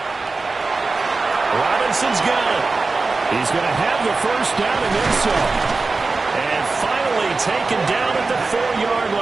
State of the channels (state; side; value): quieter; left; 3.8 dB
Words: Robinson's got it. He's going to have the first down and then some. And finally taken down at the 4-yard